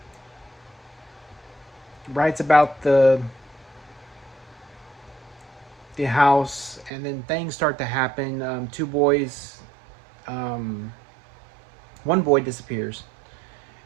writes about the house, and then things start to happen. Two boys, um, one boy disappears,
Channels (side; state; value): left; drops out; at 6.9 s